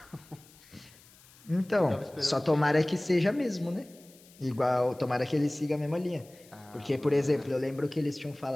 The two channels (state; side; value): noise; left; hiss, 25 dB below the sound